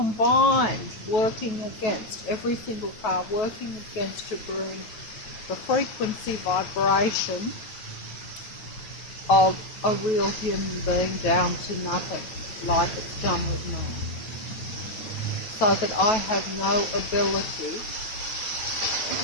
working against, every single car working against, to bring the frequency vibration of a real human being down to nothing, like it's done with me. So that I have no ability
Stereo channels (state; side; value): late; right; 9.2 ms